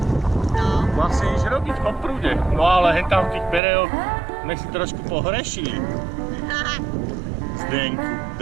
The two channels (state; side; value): drops out; left; at 3.6 s